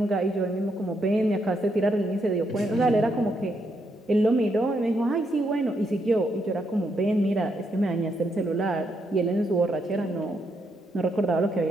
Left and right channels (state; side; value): normal; both; correlation 0.78